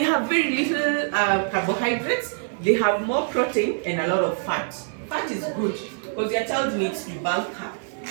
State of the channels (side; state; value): left; silent; 61 dB below the other